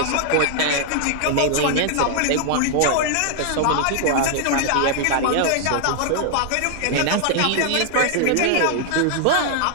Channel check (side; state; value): both; different; correlation 0.00